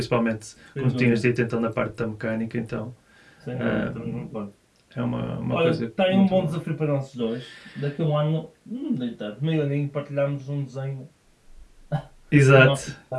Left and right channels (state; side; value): identical; both; correlation 1.00